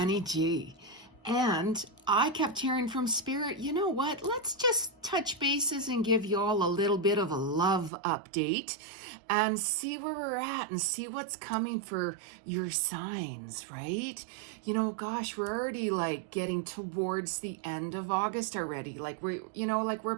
Ji. And I kept hearing from Spirit, you know what? Let's just touch bases and give you all a little bit of a love update and see where we're at and see what's coming for your signs, right? You know, gosh, we're already like getting towards the end of August already. Like we're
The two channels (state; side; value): drops out; left; at 7.9 s